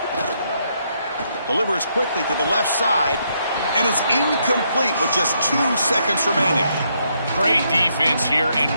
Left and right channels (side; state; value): both; inverted; correlation -0.76